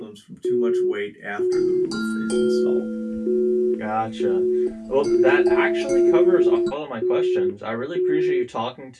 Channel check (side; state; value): both; identical; correlation 1.00